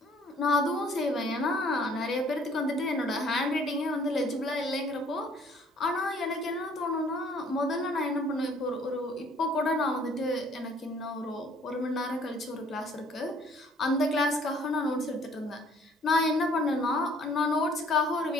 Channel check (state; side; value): normal; both; correlation 0.58